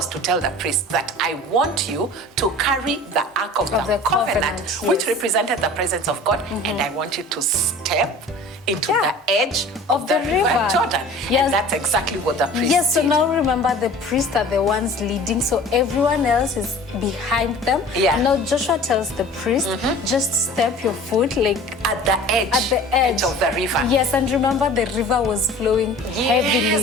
to tell the priests that I want you to carry the Ark of the Covenant, which represented the presence of God, and I want you to step into the edge of the river Jordan. Yes. And that's exactly what the priests did. So now remember, the priests are the ones leading, so everyone else is behind them. Yeah. Now Joshua tells the priest, just step your foot like at the edge of the river. Yes, and remember the river was flowing heavily.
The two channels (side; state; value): both; normal; correlation 0.43